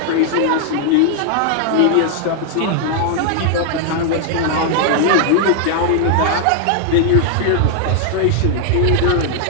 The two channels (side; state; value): both; different; correlation 0.00